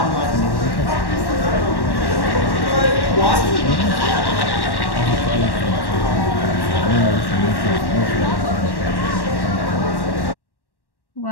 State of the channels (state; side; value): late; right; 1.1 ms